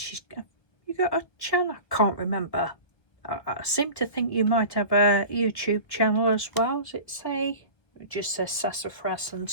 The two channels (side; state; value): right; late; 1.4 ms